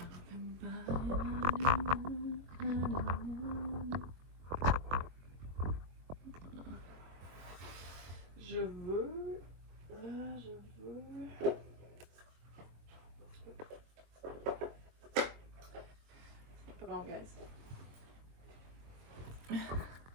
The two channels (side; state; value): left; late; 23 ms